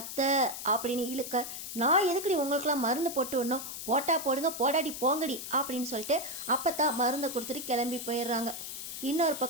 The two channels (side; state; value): left; noise; hiss, 8 dB below the sound